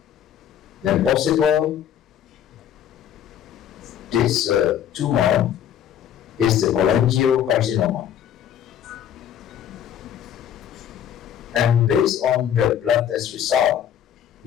Then possible this tumor is the cholangiocarcinoma. And based on the blood test result,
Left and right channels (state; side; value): quieter; right; 9.6 dB